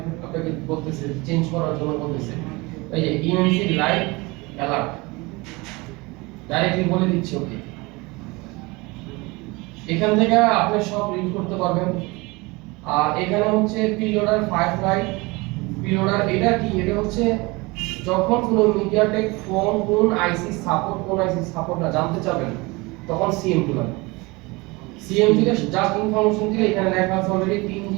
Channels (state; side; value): quieter; left; 24.4 dB